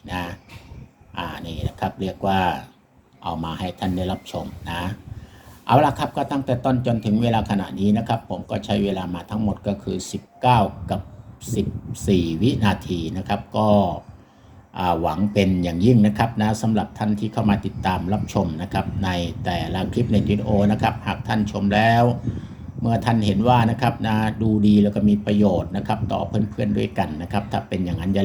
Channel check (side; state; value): both; identical; correlation 1.00